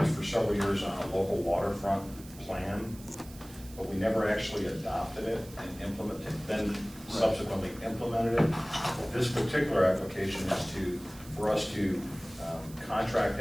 for several years on a local waterfront plan, but we never actually adopted it and implemented, then subsequently implemented it. This particular application is for us to contract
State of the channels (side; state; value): right; noise; hiss, 19 dB below the sound